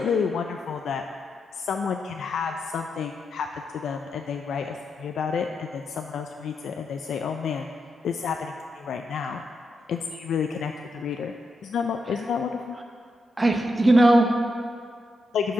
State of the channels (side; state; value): both; normal; correlation 0.84